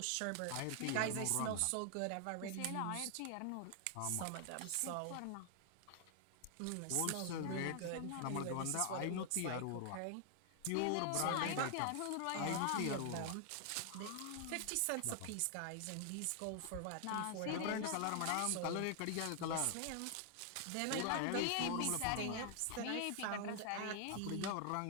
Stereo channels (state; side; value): different; both; correlation 0.00